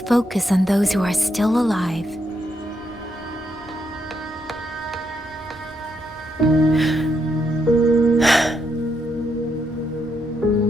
focus on those who are still alive.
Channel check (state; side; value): normal; both; correlation 0.78